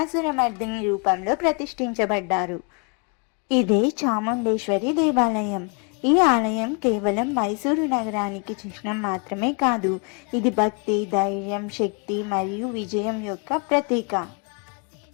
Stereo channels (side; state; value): right; quieter; 36.6 dB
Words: రూపంలో ప్రతిష్ఠించబడ్డారు. ఇదే చాముండేశ్వరి దేవాలయం. ఈ ఆలయం కేవలం మైసూరు నగరానికి చిహ్నం మాత్రమే కాదు, ఇది భక్తి, ధైర్యం, శక్తి మరియు విజయం యొక్క ప్రతీక.